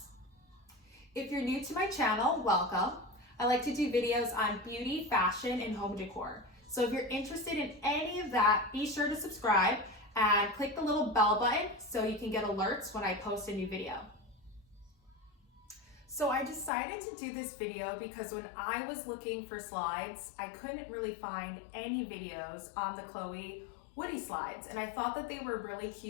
If you're new to my channel, welcome. I like to do videos on beauty, fashion, and home decor. So if you're interested in any of that, be sure to subscribe and click the little bell button so you can get alerts when I post a new video. So I decided to do this video because when I was looking for slides, I couldn't really find any videos on the Chloé Woody slides. And I thought that they were really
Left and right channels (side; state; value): right; drops out; at 16.7 s